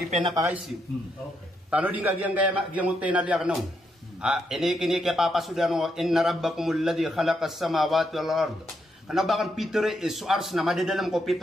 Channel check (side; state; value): both; normal; correlation 0.79